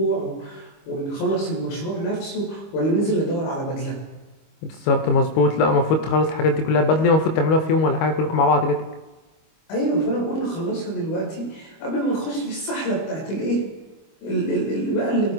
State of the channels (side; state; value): right; late; 25 ms